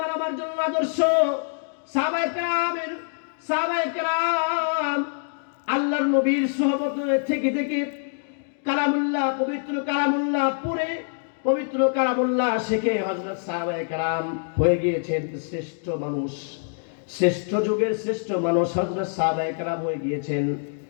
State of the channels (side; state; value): right; silent; digital silence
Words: আমার জন্য আদর্শ। সাহাবায়ে কেরাম আল্লাহর নবীর সুহবত থেকে থেকে কালামুল্লাহ, পবিত্র কালামুল্লাহ পড়ে, পবিত্র কালামুল্লাহ শিখে হযরত সাহাবায়ে কেরাম হয়ে গিয়েছেন শ্রেষ্ঠ মানুষ। শ্রেষ্ঠ যুগের শ্রেষ্ঠ মানুষ হযরত সাহাবায়ে কেরাম হয়ে গিয়েছেন,